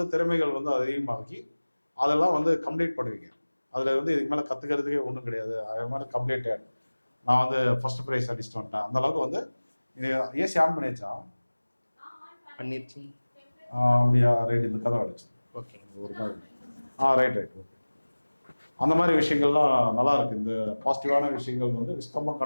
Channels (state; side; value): inverted; both; correlation -1.00